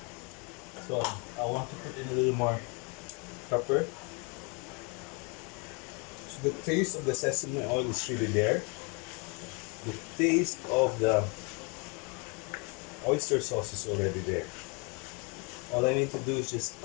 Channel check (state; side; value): quieter; right; 33.0 dB